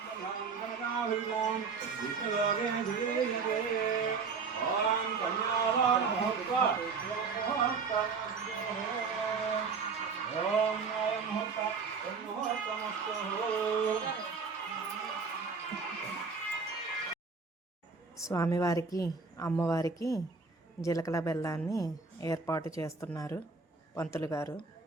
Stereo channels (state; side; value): quieter; left; 4.9 dB